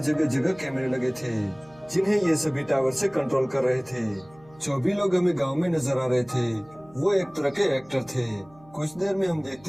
जगह जगह कैमरे लगे थे जिन्हें ये सभी टावर से कंट्रोल कर रहे थे। जो भी लोग हमें गाँव में नजर आ रहे थे वो एक तरह के एक्टर थे। कुछ देर में हम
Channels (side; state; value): right; noise; hum, 27 dB below the sound